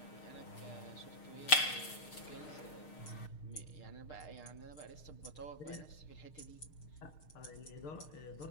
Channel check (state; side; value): late; right; 6.6 ms